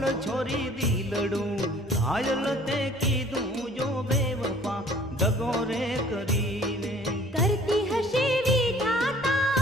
छोरी दिलड़ू घायल ते कीधू जो बेवफा दगो रे करीने। करती हशे विधाता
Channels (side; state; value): both; normal; correlation 0.53